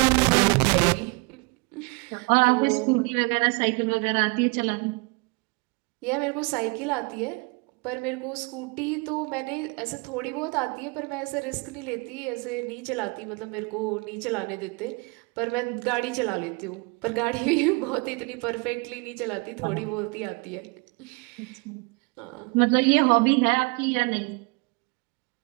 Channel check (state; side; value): quieter; left; 30.0 dB